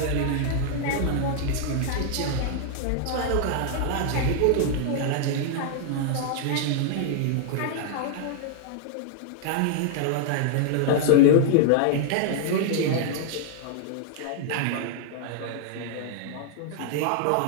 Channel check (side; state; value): both; different; correlation -0.01